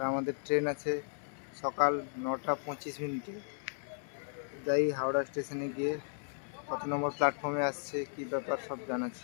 আমাদের ট্রেন আছে সকাল 9:25। যাই হাওড়া স্টেশনে গিয়ে কত নম্বর প্ল্যাটফর্মে আসছে, কি ব্যাপার সব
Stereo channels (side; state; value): right; silent; 54 dB below the other